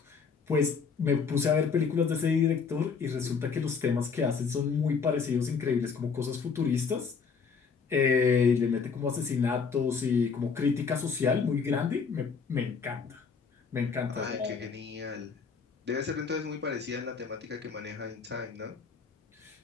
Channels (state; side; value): quieter; right; 5.6 dB